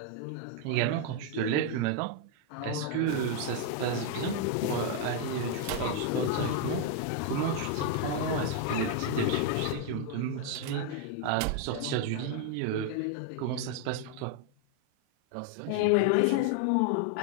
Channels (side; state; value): both; different; correlation 0.00